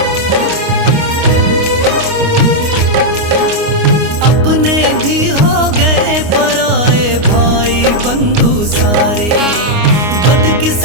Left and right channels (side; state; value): left; late; 29 ms